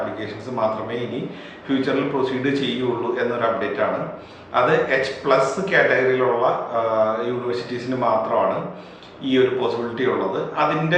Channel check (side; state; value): both; identical; correlation 1.00